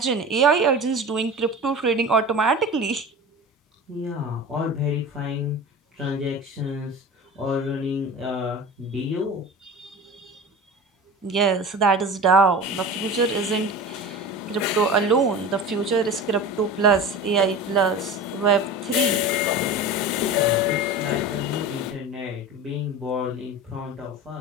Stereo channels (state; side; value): normal; both; correlation 0.32